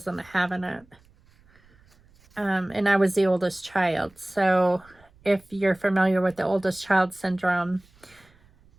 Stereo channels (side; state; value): right; noise; rumble, 30 dB below the sound